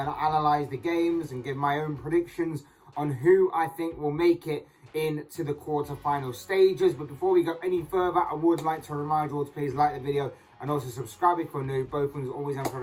analyze the games and give my own predictions on who I think will make it into the quarter-final stages. But before we go any further, I would like to remind you all to please like the video and also subscribe if you're new. Both things always and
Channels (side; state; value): both; identical; correlation 1.00